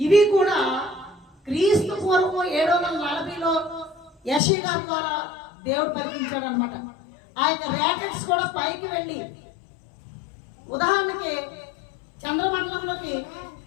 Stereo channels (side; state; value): right; drops out; at 4.4 s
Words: ఇవి కూడా క్రీస్తు పూర్వం 740లో యెషయా ద్వారా దేవుడు పలికించాడు అనమాట. ఆ యొక్క రాకెట్స్ కూడా పైకి వెళ్ళి, ఉదాహరణకి చంద్రమండలంలోకి